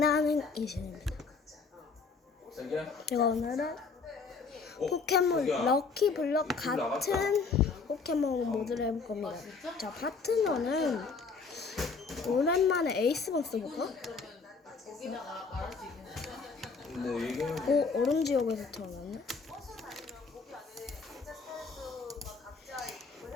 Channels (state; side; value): quieter; right; 4.8 dB